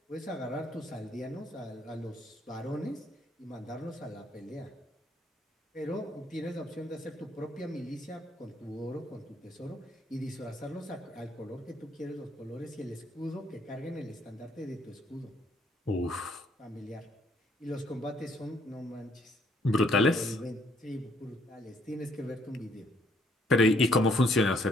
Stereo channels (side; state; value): both; normal; correlation 0.67